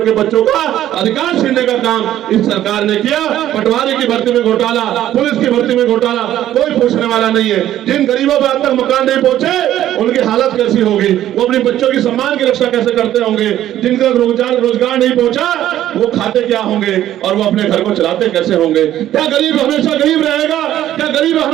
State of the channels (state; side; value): quieter; left; 12.5 dB